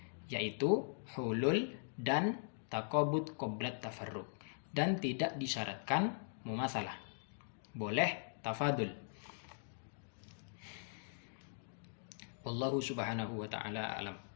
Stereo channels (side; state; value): right; silent; digital silence